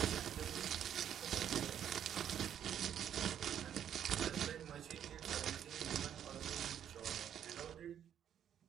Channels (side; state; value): left; quieter; 9.5 dB